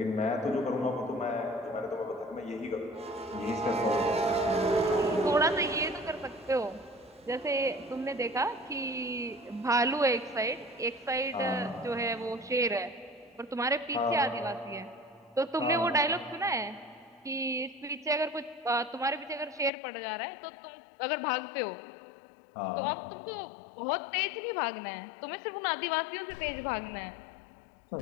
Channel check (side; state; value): right; drops out; at 19.7 s